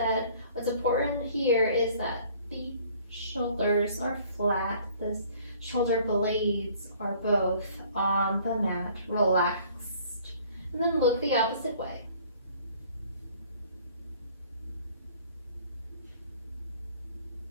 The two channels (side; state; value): both; inverted; correlation -0.55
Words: what's important here is that the shoulders are flat. The shoulder blades are both on the mat, relaxed. And then look the opposite way.